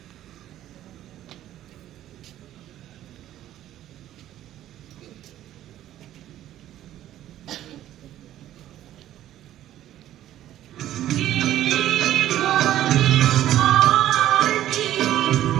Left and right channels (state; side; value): quieter; left; 12.8 dB